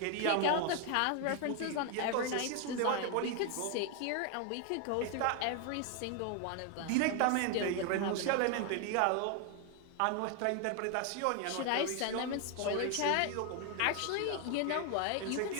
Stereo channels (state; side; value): different; both; correlation 0.01